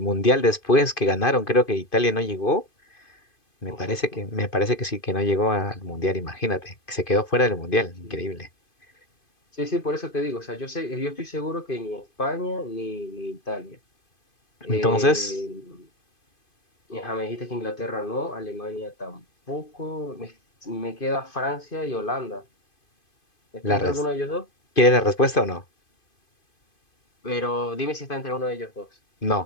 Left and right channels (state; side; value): late; right; 2.5 ms